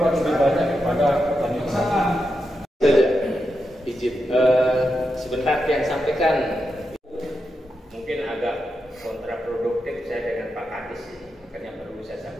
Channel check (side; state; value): both; normal; correlation 0.87